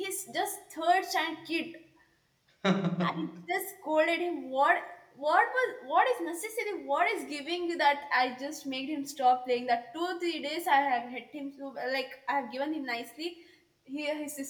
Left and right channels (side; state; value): both; identical; correlation 1.00